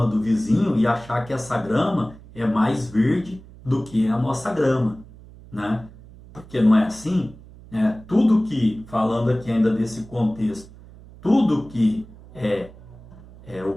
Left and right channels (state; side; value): noise; right; hum, 20 dB below the sound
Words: do vizinho e achar que essa grama é mais verde do que a nossa grama, Porque não é assim? Tudo que, falando aqui ainda desse contexto, tudo que o